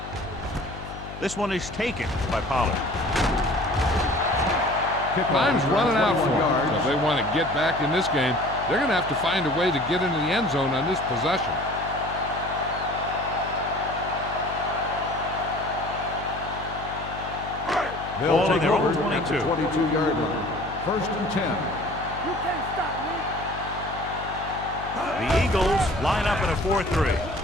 This one is taken by Pollard. Time's running out for them. So if they want to get back in this game, they're going to have to find a way to get into the end zone on this possession. Ball on their own over at the 22. 22-yard line. First and 10. You can't stop me. The Eagles line up in a 4-3.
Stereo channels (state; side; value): noise; left; hum, 12 dB below the sound